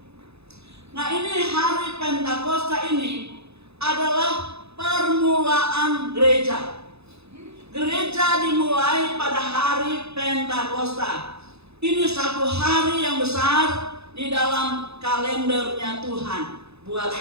Nah, ini hari Pentakosta ini adalah permulaan gereja. Gereja dimulai pada hari Pentakosta. Ini satu hari yang besar di dalam kalendernya Tuhan buat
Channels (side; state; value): left; late; 0.79 ms